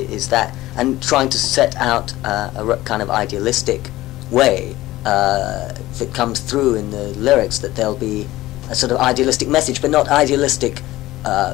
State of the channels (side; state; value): right; quieter; 16.8 dB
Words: that, and trying to set out a kind of idealistic way that comes through in the lyrics, that there'll be a sort of idealistic message, but not idealistic